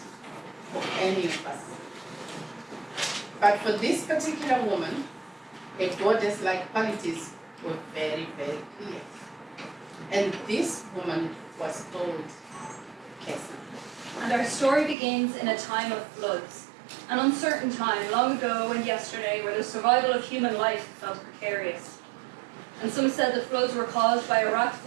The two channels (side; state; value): left; drops out; at 15.0 s